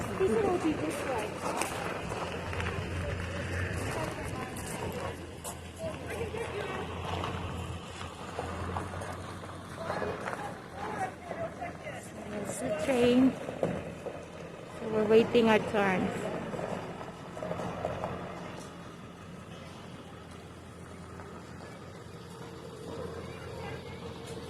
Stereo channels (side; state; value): both; identical; correlation 1.00